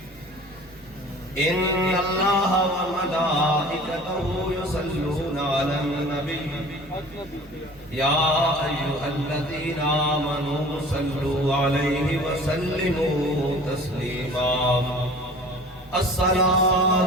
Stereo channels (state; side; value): normal; both; correlation 0.44